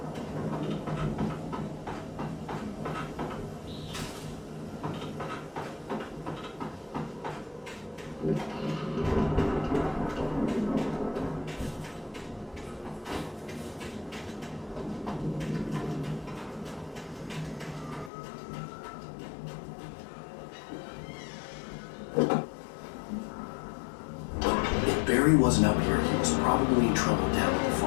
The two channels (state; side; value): drops out; right; at 18.1 s